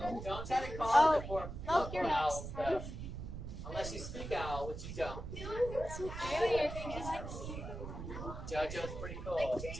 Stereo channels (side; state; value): right; noise; rumble, 8 dB below the sound